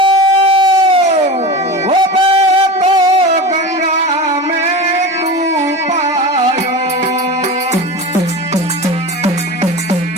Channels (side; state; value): both; normal; correlation 0.27